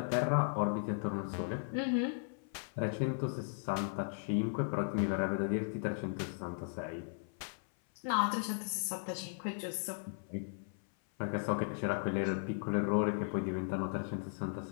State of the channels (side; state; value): right; silent; 53 dB below the other